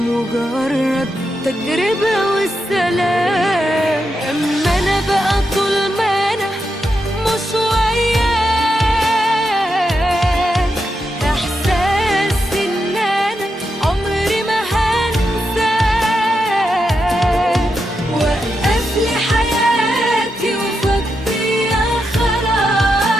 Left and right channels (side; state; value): both; normal; correlation 0.85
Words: تجربة والسلام. اما انا بقى طول ما انا مش وياك، احساس ان انا عمري ما هنساك. وقف لي حياتي وفضيها